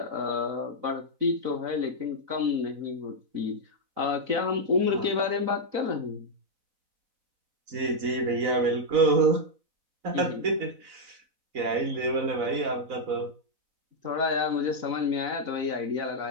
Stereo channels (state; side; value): late; left; 4.0 ms